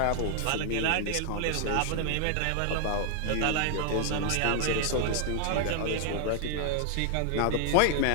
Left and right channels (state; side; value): different; both; correlation 0.00